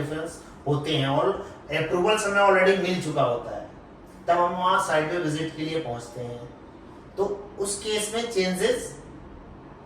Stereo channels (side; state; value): both; identical; correlation 1.00